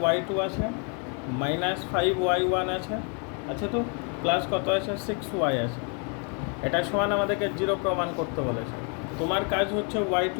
y2 আছে মাইনাস 5y1 আছে আচ্ছা তো প্লাস কত আছে 6y আছে এটা সমান আমাদেরকে 0 প্রমাণ করতে বলেছে তোমার কাজ হচ্ছে y2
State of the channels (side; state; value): right; quieter; 37.8 dB